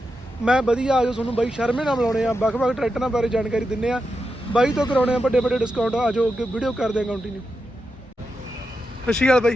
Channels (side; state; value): both; normal; correlation 0.88